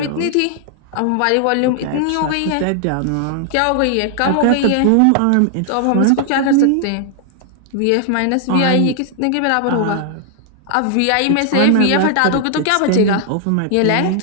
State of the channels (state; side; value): different; both; correlation 0.00